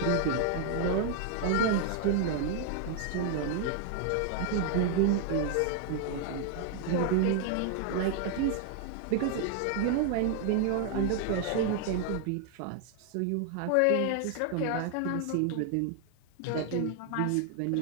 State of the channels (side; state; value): both; different; correlation 0.00